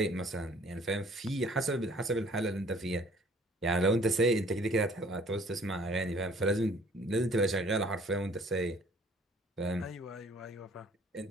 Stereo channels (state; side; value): normal; both; correlation 0.56